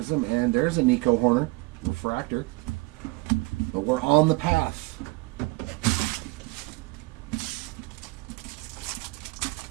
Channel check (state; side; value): quieter; left; 23.8 dB